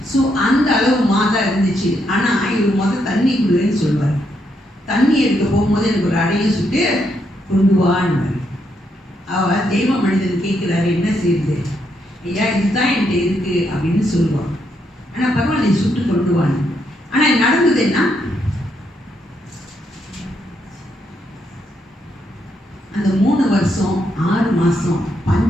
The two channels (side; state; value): both; normal; correlation 0.78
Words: ஸோ அந்த அளவு மா தான் இருந்துச்சு. ஆனால் இவர் தண்ணி குடுன்னு சொல்லுவார். தண்ணி எடுக்க போகும்போது எனக்கு ஒரு அடையும் சுட்டு கொண்டு வான்னு. அவள் தெய்வ மனிதன் கேட்குறாரு, என்ன செய்யுது? ஐயா இதுதான் என்கிட்ட இருக்குது அப்படின்னு சொல்லுவான். ஆனால் பரவாயில்ல, நீ சுட்டு கொண்டு வான்னு. ஆனால் நடந்தது என்ன? அந்த 3 வருஷம் 6 மாதம்